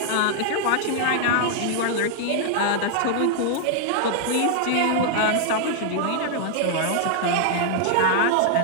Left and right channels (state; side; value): different; both; correlation -0.01